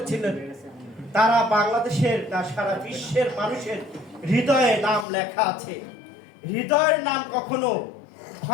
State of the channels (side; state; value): right; drops out; at 5.1 s